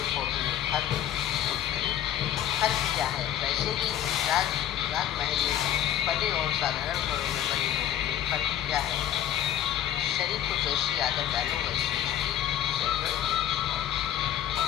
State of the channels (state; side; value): quieter; right; 11.2 dB